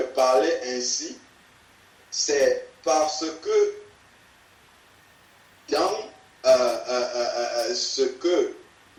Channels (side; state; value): both; identical; correlation 1.00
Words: ainsi, c'est parce que dans ce que